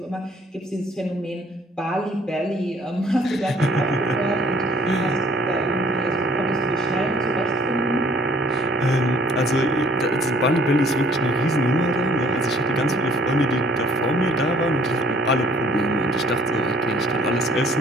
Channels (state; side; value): normal; both; correlation 0.55